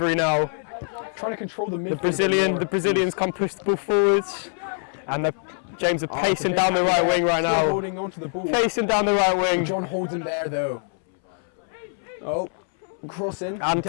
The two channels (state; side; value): silent; right; 62 dB below the other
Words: now. Trying to control the midfield. The Brazilians come push the ball forwards. And James are pacing down the right wing right now. Holding on to the ball. Pacing down the right wing. John holds him there though. Oh. Crossing and